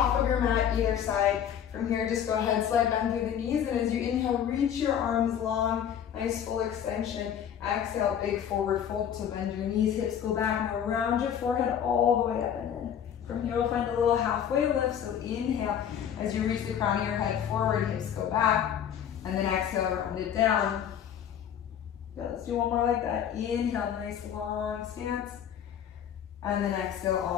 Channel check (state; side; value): quieter; right; 9.1 dB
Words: of your mat, either side. From here, just go ahead, slide bend through the knees, and as you inhale, reach your arms long, nice full extension. Exhale, big forward fold to bend your knees, hips go back, and round your forehead all the way up and in. From here, we'll find a little halfway lift, so inhale. As you reach the crown of your head forward, hips go back, and then exhale, round it down. Good, let's do one more like that. Inhale, nice long stance, and then exhale